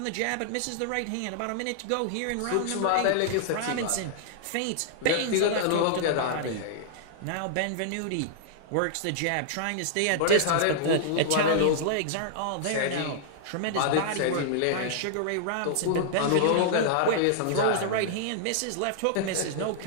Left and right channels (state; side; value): different; both; correlation -0.01